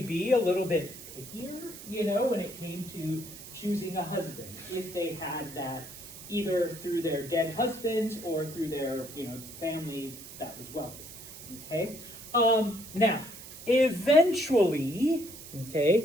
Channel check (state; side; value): noise; right; hiss, 14 dB below the sound